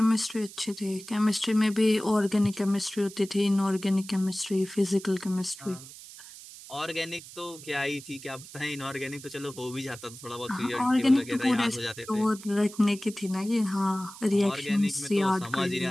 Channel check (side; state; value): right; noise; hiss, 16 dB below the sound